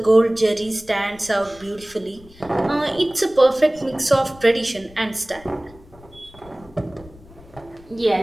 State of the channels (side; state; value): left; noise; rumble, 23 dB below the sound